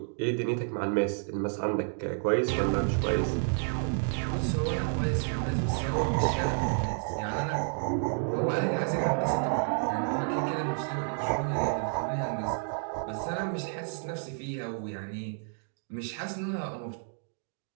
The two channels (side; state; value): left; silent; 58 dB below the other